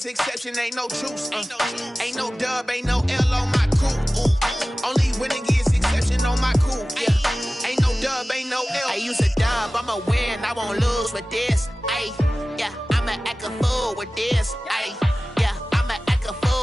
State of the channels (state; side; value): normal; both; correlation 0.97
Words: exception, ain't no truce. Ain't no dub, ain't no L on my crew. Only winning is exception on my crew. Yeah, ain't no dub, ain't no L. I use a dub, I'ma win, I won't lose with this. Ay, yeah, I'ma act a fool with this. Ay, yeah, I'ma act a